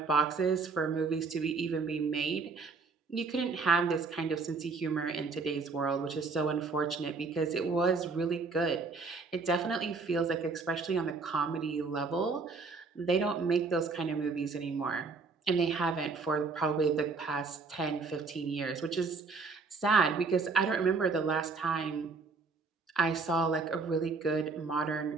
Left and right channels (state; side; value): quieter; left; 4.3 dB